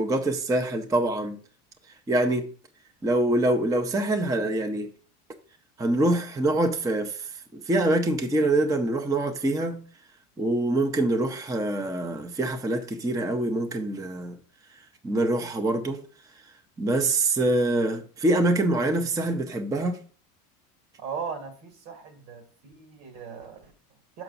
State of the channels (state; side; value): normal; both; correlation 0.62